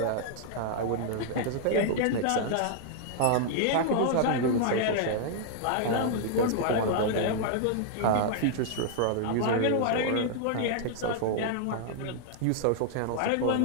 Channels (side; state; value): both; different; correlation -0.01